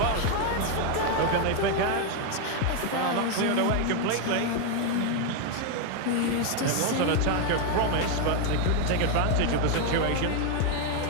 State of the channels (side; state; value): both; different; correlation 0.01